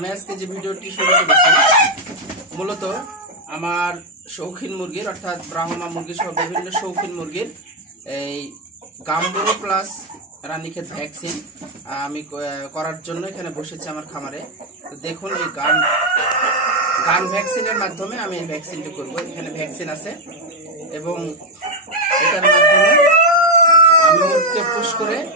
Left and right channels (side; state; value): both; normal; correlation 0.02